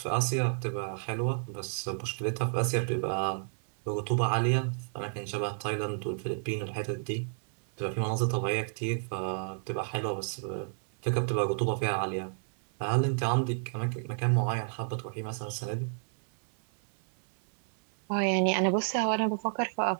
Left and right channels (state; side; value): silent; left; 57 dB below the other